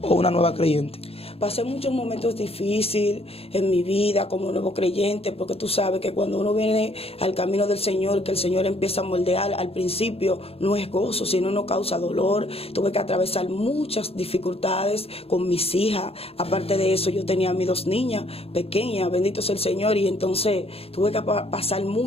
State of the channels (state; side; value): late; right; 0.28 ms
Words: o una nueva creyente. Pasé muchos momentos difíciles en mi vida como nuevo creyente, porque tú sabes que cuando uno viene al camino del Señor, que el Señor empieza a moldear, al principio no es gozo, sino no causa dolor. Tuve que atravesar muchas dificultades con mis hijas. Aparte de eso, yo tenía a mis 2 niñas pequeñas, bendito sea el Señor, y entonces tuve que pasar